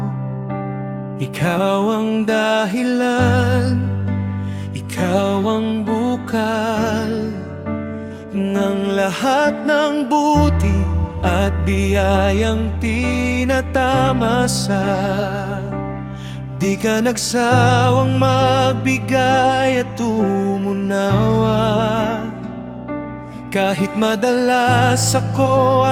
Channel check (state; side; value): identical; both; correlation 1.00